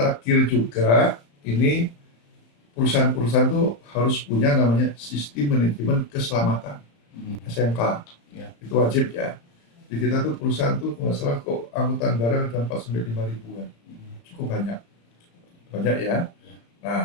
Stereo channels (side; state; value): right; late; 35 ms